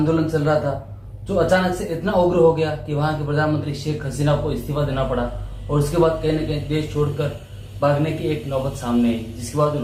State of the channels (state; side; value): identical; both; correlation 1.00